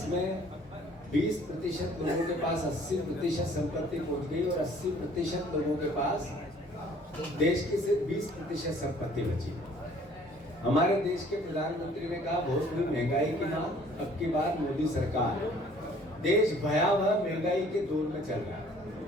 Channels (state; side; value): normal; both; correlation 0.56